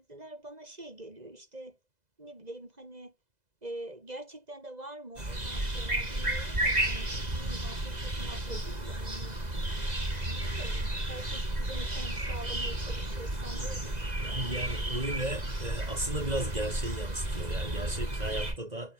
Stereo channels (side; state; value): left; late; 2.0 ms